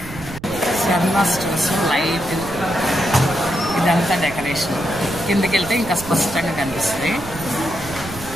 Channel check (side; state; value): right; noise; rumble, 14 dB below the sound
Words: సర్వనా స్టోర్స్ లైట్ ఇదంతా డెకరేషన్. కిందకి వెళ్తే ఇంకా స్పష్టంగా కనిపిస్తుంది.